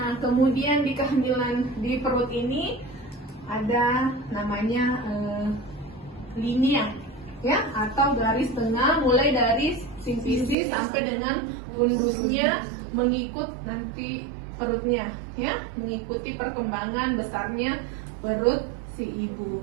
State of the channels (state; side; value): drops out; left; at 10.6 s